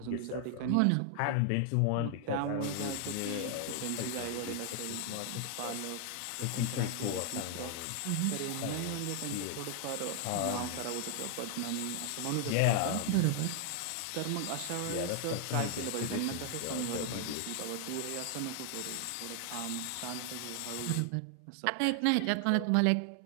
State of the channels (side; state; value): both; different; correlation 0.00